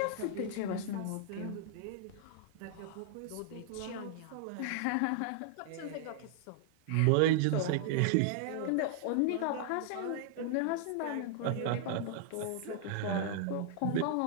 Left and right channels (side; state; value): both; different; correlation -0.01